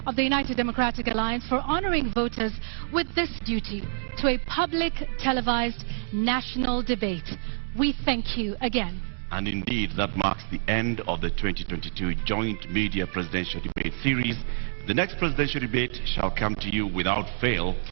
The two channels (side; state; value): left; silent; digital silence